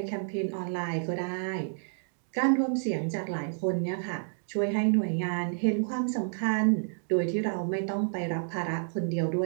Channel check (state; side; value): silent; left; digital silence